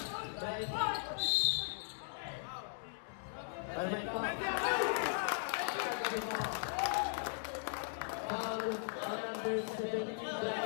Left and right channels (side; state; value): right; silent; digital silence